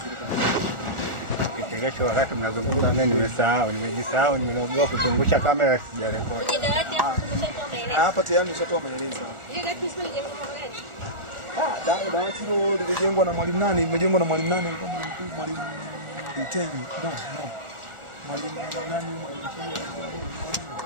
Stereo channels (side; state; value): left; late; 1.4 ms